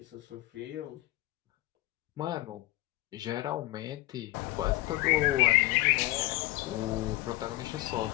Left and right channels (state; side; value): quieter; right; 18.4 dB